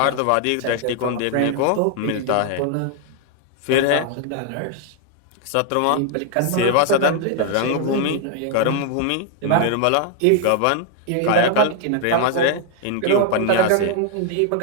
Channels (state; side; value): different; both; correlation 0.00